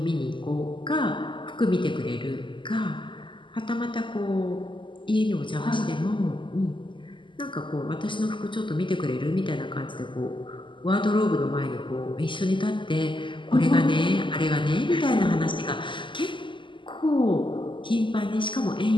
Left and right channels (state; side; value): late; right; 0.24 ms